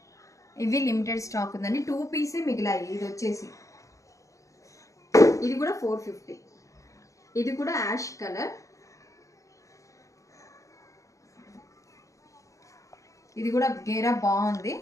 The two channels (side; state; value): right; late; 0.15 ms